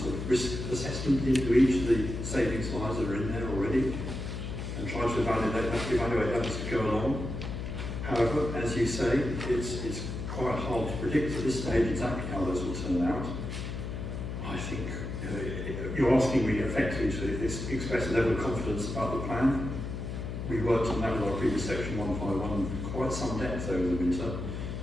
of risk assessment into each of the savings lines that are in there already, and try to evaluate that as we go along. However, as you say, it's quite hard to predict at this stage exactly how those will turn out. I think you're asking me effectively to express a level of confidence about the plan. We worked on that with our previous section 151 quite some depth over the winter.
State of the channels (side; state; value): left; noise; hum, 5 dB below the sound